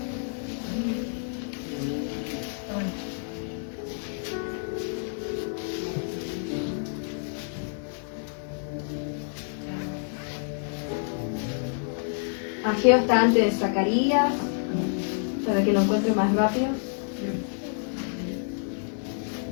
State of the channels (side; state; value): right; silent; 59 dB below the other